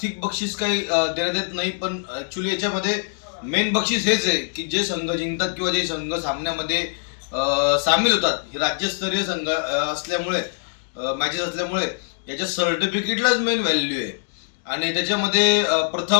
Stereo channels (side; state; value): right; silent; digital silence